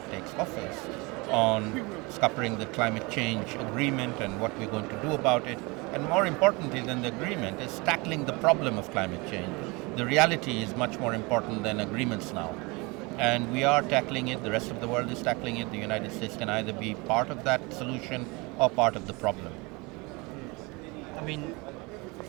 takes office on scuppering the climate change agreement and what we're going to do about it. And more importantly than the agreement is tackling the problem of climate change. The reality is much more important than agreements now. And we are tackling it, the rest of the world is tackling it. The United States can either be part of that solution or part of the problem. I mean,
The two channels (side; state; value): left; quieter; 26.4 dB